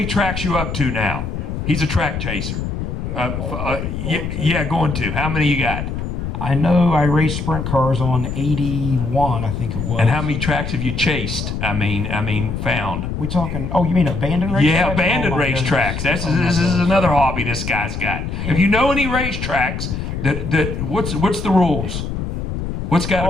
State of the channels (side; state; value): left; noise; rumble, 4 dB below the sound